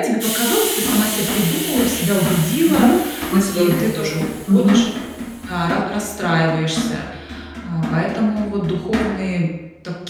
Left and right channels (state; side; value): identical; both; correlation 1.00